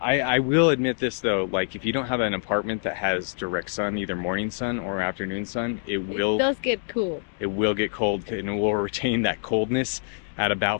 will admit this though, like if you don't have an apartment that has direct sun, either morning sun or afternoon sun, it does get cool. It will get cold and it will retain that coldness at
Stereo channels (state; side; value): silent; right; digital silence